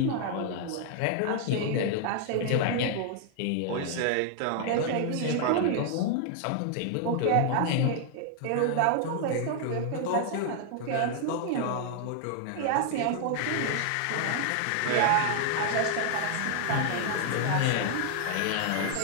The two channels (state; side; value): different; both; correlation 0.00